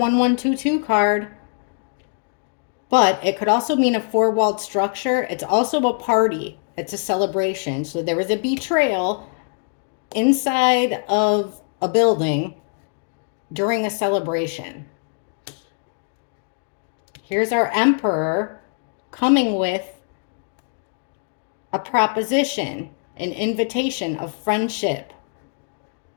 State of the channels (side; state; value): right; silent; digital silence